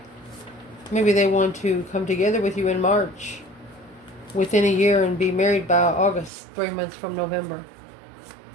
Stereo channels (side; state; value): left; drops out; at 6.3 s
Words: Maybe they want to come together with you in March within a year and be married by August, 3 months from November.